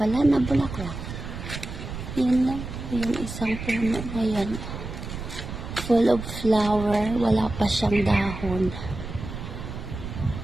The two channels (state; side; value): noise; right; rumble, 8 dB below the sound